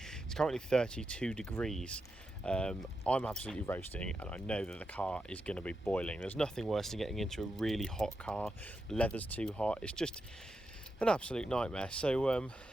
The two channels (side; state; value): both; normal; correlation 0.87